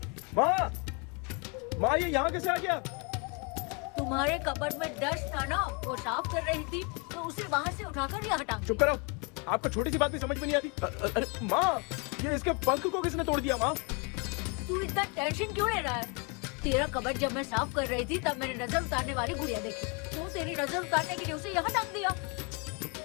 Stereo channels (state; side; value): quieter; right; 33.0 dB